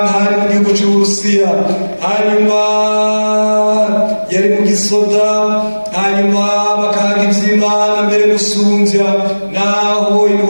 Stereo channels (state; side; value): inverted; both; correlation -1.00